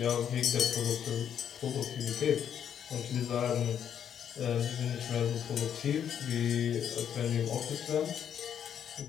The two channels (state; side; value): quieter; right; 8.9 dB